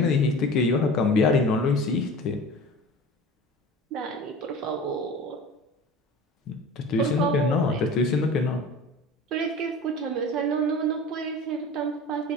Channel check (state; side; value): normal; both; correlation 0.38